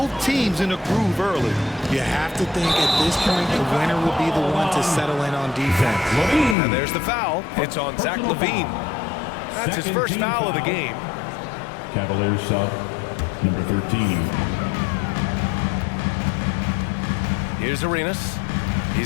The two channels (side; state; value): right; drops out; at 6.6 s